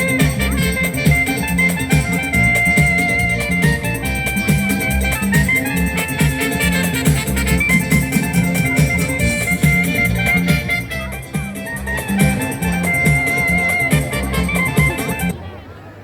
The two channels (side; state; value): both; identical; correlation 1.00